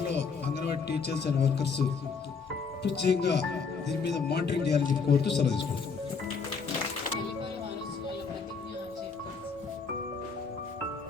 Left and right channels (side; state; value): right; quieter; 5.2 dB